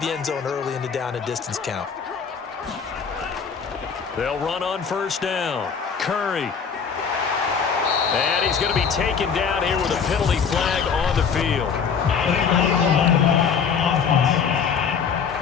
the end zone early in the down and distance count. They'll run on first down. Curry. And he's going to be taken down here with a penalty flag on the field.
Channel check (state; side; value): quieter; right; 6.4 dB